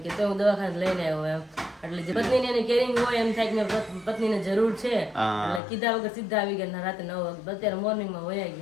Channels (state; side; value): drops out; right; at 5.6 s